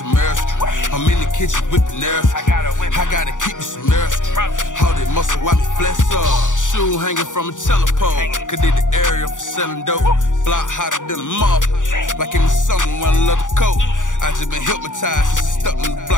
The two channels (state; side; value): late; right; 0.87 ms